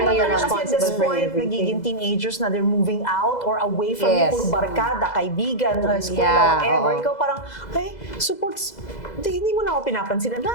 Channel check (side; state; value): right; late; 2.0 ms